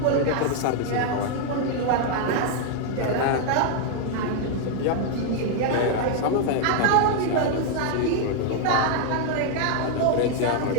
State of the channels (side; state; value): both; different; correlation 0.00